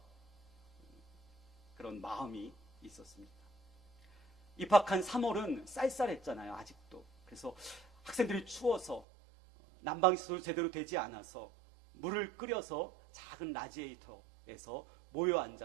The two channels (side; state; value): left; drops out; at 9.1 s